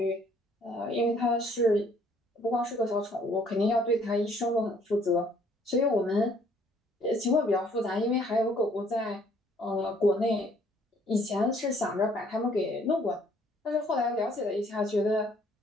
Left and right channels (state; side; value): normal; both; correlation 0.62